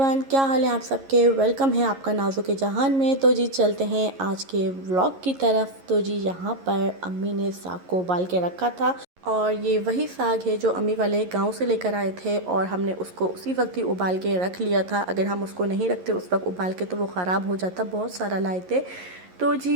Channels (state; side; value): late; left; 11 ms